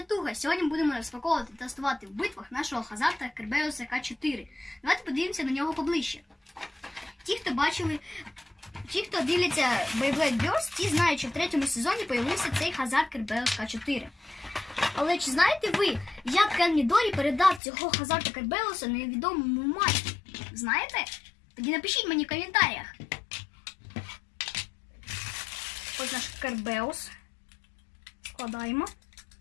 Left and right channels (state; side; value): drops out; right; at 17.6 s